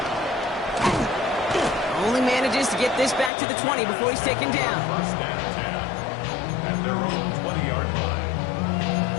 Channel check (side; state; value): right; drops out; at 3.3 s